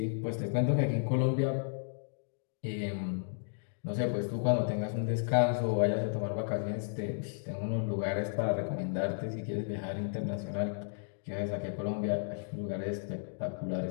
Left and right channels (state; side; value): silent; right; digital silence